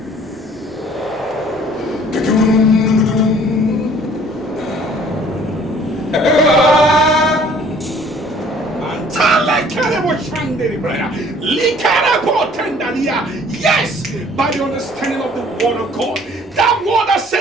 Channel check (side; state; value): both; normal; correlation 0.55